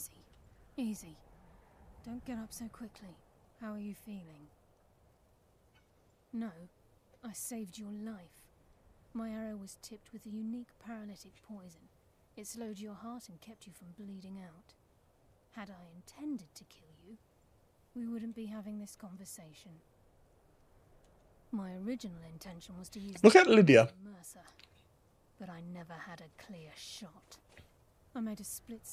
Easy. Don't get up so quickly. How are you feeling? No, I saved your life. My arrow was tipped with a unique paralytic poison. It slowed your heart and kept you from bleeding out. Had I intended to kill you, we wouldn't be having this conversation. My original intention was to use Look at Lydia. Mercer, but I never had a clear shot. I made a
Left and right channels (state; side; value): identical; both; correlation 1.00